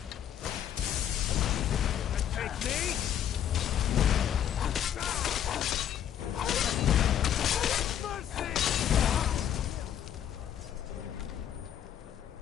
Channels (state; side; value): quieter; right; 10.0 dB